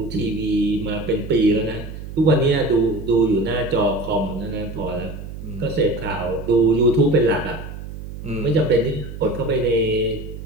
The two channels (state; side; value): noise; right; hum, 11 dB below the sound